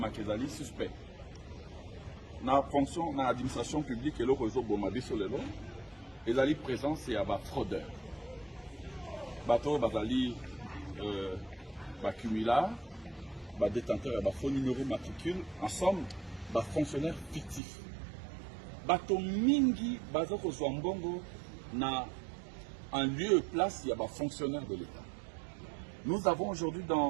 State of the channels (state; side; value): drops out; left; at 17.6 s